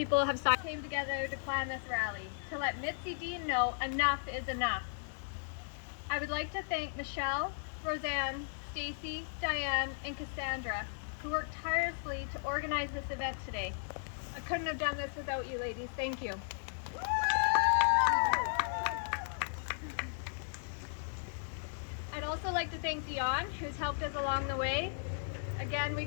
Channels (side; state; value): right; silent; digital silence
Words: have came together to plan this rally, to let Mitzi Dean know enough is enough. I would like to thank Michelle, Roseanne, Stacy, Diane, and Cassandra, who worked tirelessly to organize this event today. I couldn't have done this without you ladies. Thank you. I'd also like to thank Dion, who's helped us along the way. Again, we